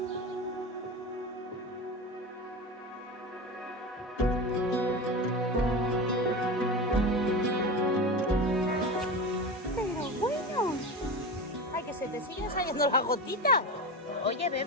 Ay, que se te siguen saliendo las gotitas. Oye,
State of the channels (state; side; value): normal; both; correlation 0.25